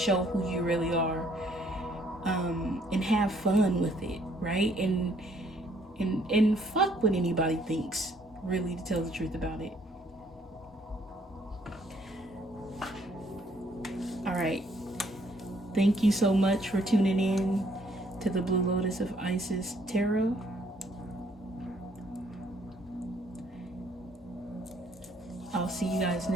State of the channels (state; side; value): normal; both; correlation 0.65